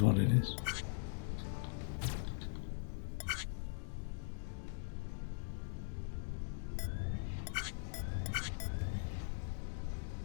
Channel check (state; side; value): silent; right; digital silence